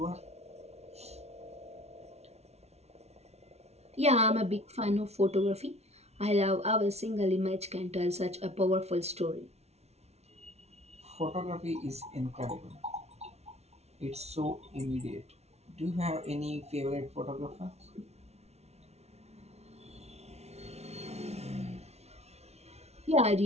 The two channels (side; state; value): left; late; 0.31 ms